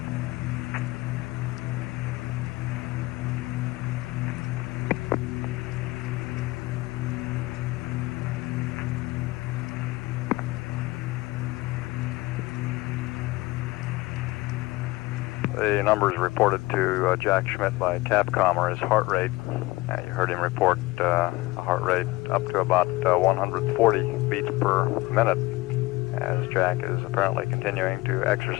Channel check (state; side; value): quieter; right; 20.6 dB